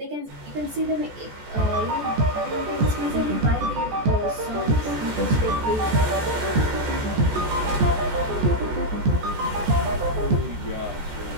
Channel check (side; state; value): left; late; 14 ms